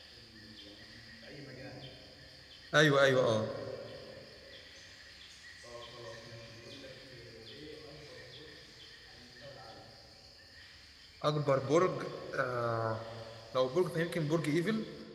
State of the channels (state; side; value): identical; both; correlation 1.00